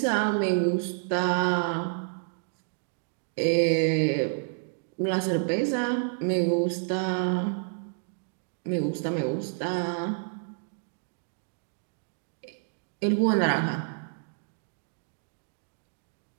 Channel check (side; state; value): left; silent; digital silence